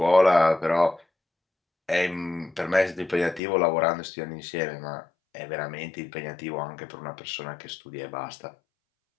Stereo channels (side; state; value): right; drops out; at 3.4 s